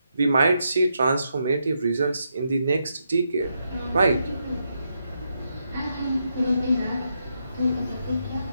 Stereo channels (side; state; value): both; inverted; correlation -0.81